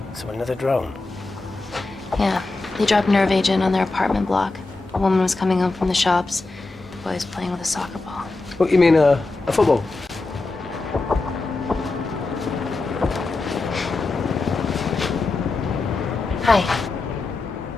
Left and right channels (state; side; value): quieter; right; 3.4 dB